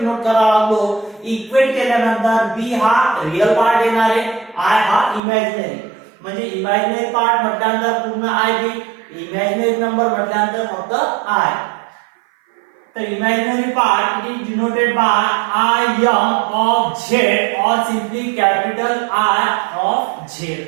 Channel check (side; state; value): left; drops out; at 5.2 s